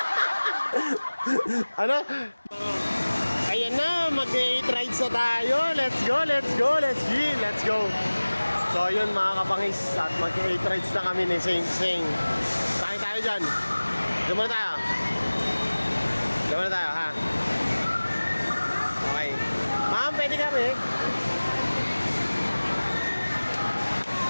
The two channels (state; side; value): inverted; both; correlation -1.00